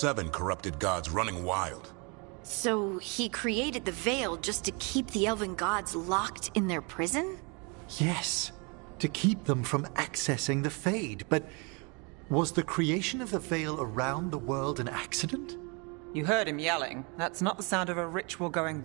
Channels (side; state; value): left; quieter; 31.8 dB